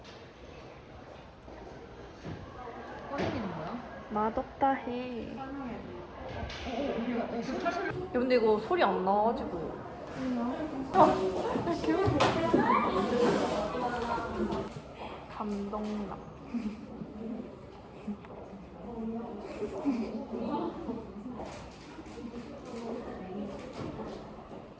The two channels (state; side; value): identical; both; correlation 1.00